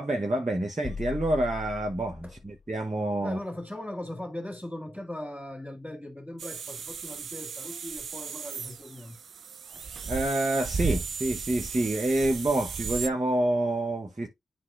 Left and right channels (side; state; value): both; normal; correlation 0.87